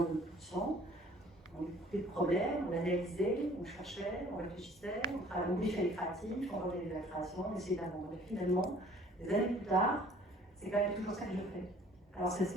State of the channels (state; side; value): normal; both; correlation 0.54